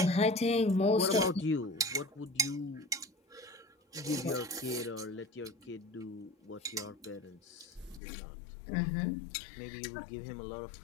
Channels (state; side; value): drops out; right; at 8.0 s